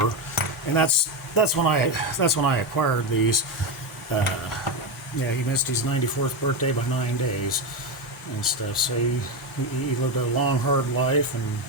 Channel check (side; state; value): both; normal; correlation 0.12